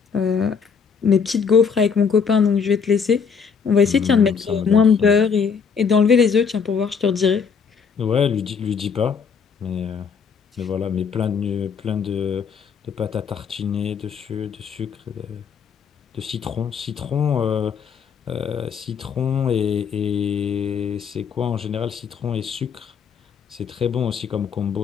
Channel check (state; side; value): quieter; right; 6.2 dB